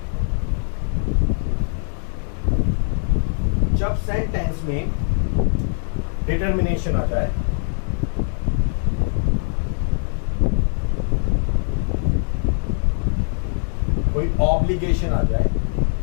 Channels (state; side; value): silent; right; digital silence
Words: जब सेंटेंस में डिटर्मिनेशन आ जाए, कोई ऑब्लिगेशन आ जाए